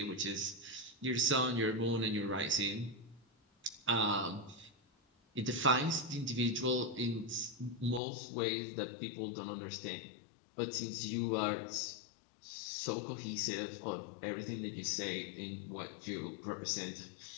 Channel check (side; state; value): right; drops out; at 8.0 s